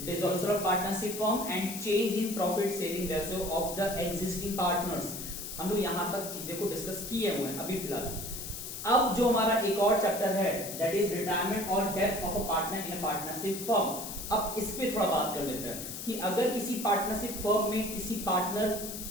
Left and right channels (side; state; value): left; noise; hiss, 8 dB below the sound